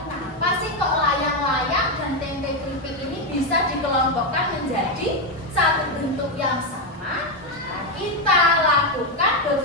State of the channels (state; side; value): normal; both; correlation 0.07